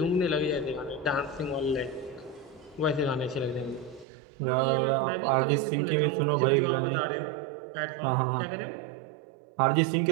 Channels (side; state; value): left; drops out; at 4.0 s